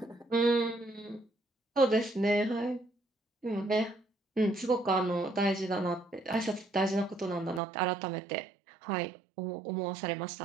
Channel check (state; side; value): drops out; left; at 7.6 s